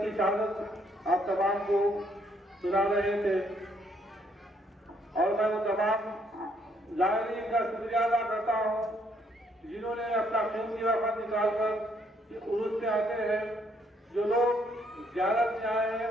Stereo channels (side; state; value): both; normal; correlation 0.70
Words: کی شہادت آپ تمام کو سنا رہے تھے اور میں وہ تمام زائرین کا شکریہ ادا کرتا ہوں جنہوں نے اپنا قیمتی وقت نکال کر عرس سے آتے ہیں۔ جو لوگ زیارت میں آئے ہیں